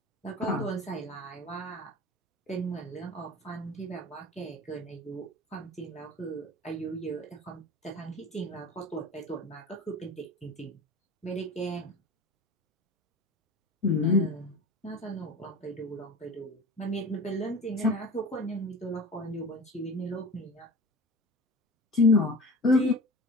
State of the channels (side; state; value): both; normal; correlation 0.37